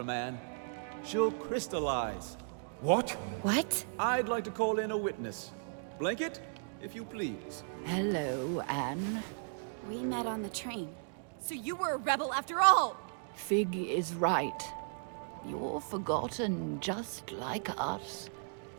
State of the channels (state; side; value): silent; left; digital silence